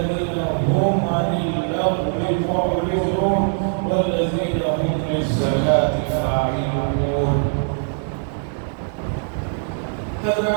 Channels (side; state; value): left; silent; 65 dB below the other